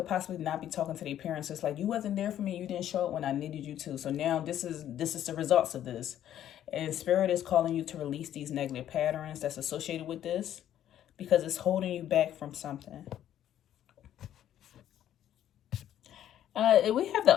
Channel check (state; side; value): quieter; right; 11.2 dB